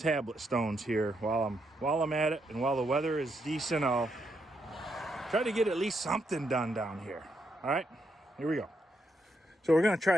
stones here while I'm at it. And while the weather is decent, I'll try to get at least something done down here. All right, here we go. So we're gonna try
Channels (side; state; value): both; normal; correlation 0.79